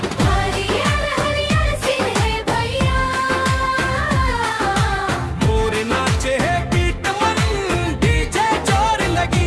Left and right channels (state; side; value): identical; both; correlation 1.00